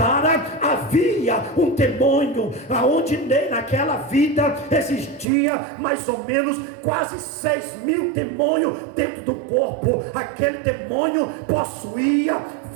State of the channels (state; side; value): drops out; left; at 5.2 s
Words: havia um demônio, aonde naquela vida existia mais ou menos quase 6.000 demônios dentro do corpo. Aquele demônio possuía